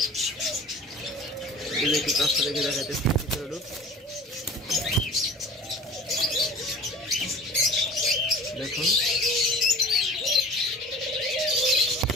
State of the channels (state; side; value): normal; both; correlation 0.42